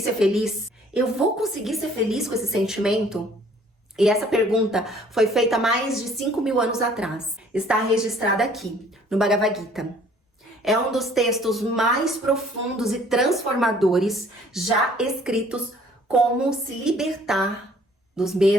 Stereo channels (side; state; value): both; normal; correlation 0.57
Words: feliz? Eu vou conseguir ser feliz com esse sentimento? E essa pergunta foi feita mais de 5.000 anos atrás. Está registrada aqui, no Bhagavad Gita. É um dos textos mais profundos e transformadores já escritos. Como se libertar dos